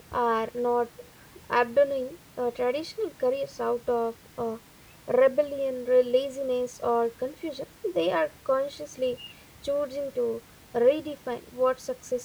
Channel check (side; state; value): both; identical; correlation 1.00